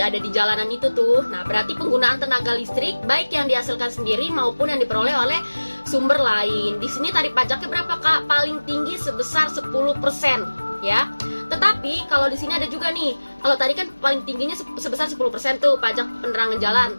di jalanan itu tuh. Nah, berarti penggunaan tenaga listrik baik yang dihasilkan sendiri maupun yang diperoleh oleh sumber lain. Di sini tarif pajaknya berapa, Kak? Paling tinggi sebesar 10% ya. Tetapi kalau di sini ada juga nih, kalau tadi kan paling tingginya sebesar 10% tuh pajak penerangan jalan.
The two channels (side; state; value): both; inverted; correlation -1.00